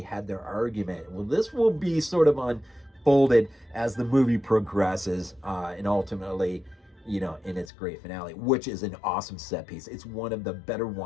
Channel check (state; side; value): drops out; right; at 7.7 s